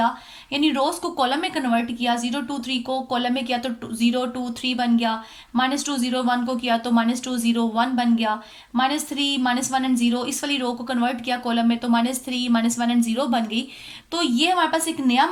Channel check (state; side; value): identical; both; correlation 1.00